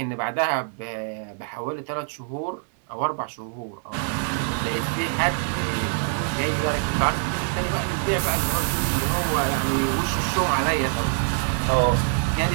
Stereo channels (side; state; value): left; silent; digital silence